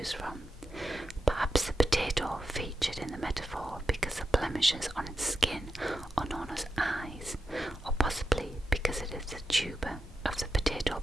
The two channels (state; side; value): normal; both; correlation 0.89